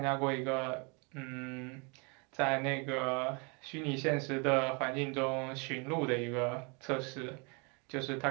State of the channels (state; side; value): quieter; left; 32.1 dB